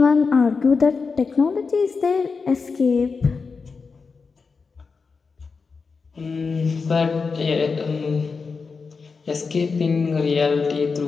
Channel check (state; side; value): quieter; right; 4.8 dB